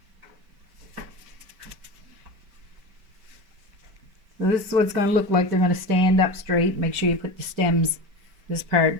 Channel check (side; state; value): left; late; 5.2 ms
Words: So this is what it's going to look like. They're going to stand up straight. Make sure you put the stems, this part,